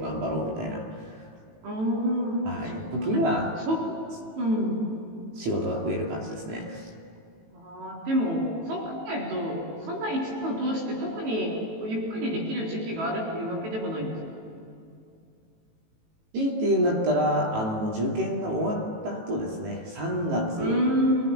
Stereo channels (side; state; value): left; late; 18 ms